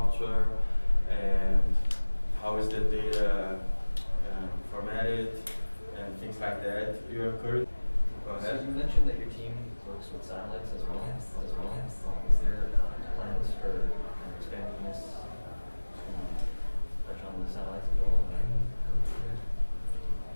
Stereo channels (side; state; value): both; inverted; correlation -1.00